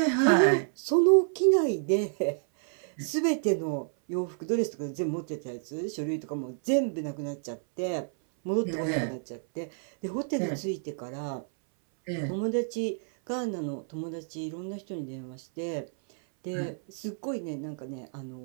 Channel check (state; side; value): silent; left; 58 dB below the other